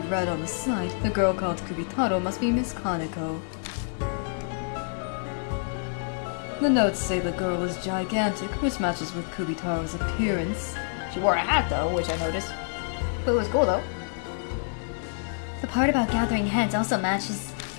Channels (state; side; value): silent; right; 60 dB below the other